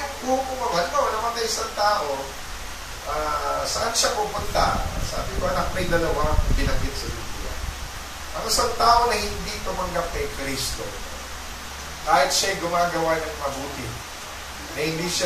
hukman, halimbawa, namatay isang tao, saan siya pupunta? Sabi ko, anak, may dalawa binanggit sa Biblia. isang tao na hindi tumanggap kay Kristo, kahit siya'y gumagawa ng mabuti, na hindi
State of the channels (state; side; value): identical; both; correlation 1.00